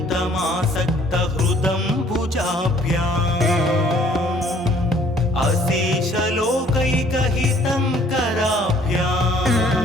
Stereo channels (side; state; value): both; normal; correlation 0.59